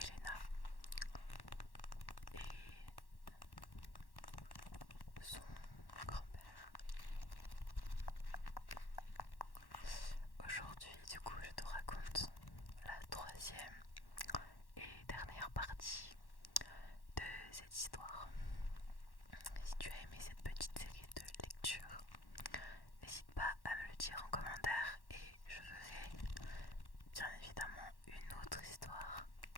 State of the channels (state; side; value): late; right; 1.1 ms